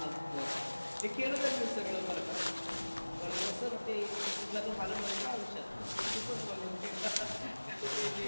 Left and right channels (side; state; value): both; inverted; correlation -1.00